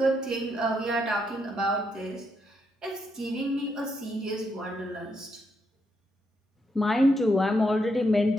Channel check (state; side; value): normal; both; correlation 0.79